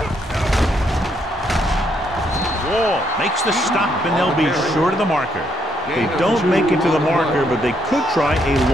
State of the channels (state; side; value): normal; both; correlation 0.74